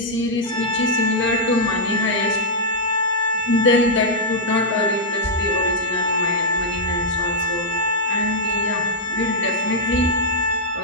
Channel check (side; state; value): both; normal; correlation -0.06